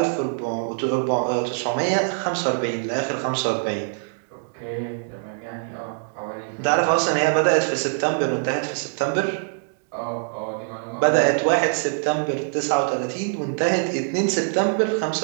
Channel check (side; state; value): left; silent; digital silence